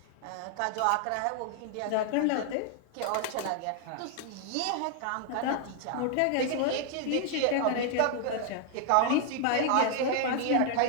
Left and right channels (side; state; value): both; different; correlation 0.00